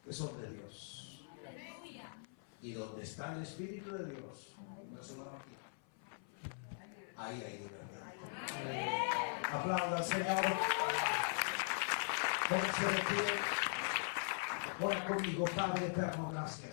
que son de Dios. Y donde está el Espíritu de Dios, ahí hay libertad. Aplauda al Señor. Póngase de pie. Ora conmigo, Padre eterno,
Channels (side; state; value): right; silent; 50 dB below the other